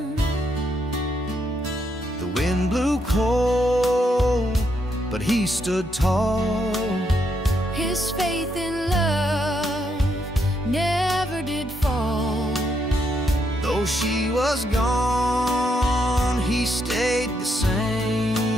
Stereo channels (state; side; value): normal; both; correlation 0.77